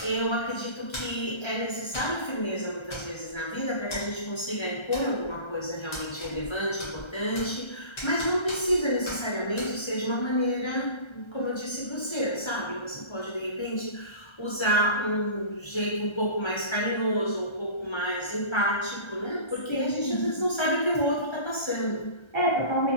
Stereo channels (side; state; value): right; late; 1.3 ms